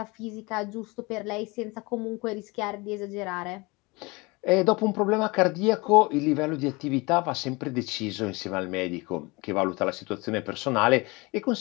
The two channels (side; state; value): right; quieter; 25.5 dB